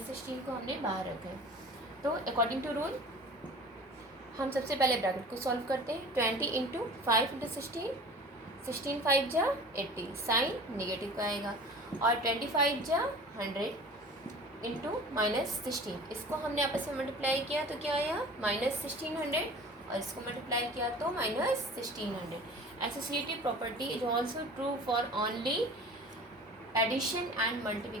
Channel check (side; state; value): both; normal; correlation 0.41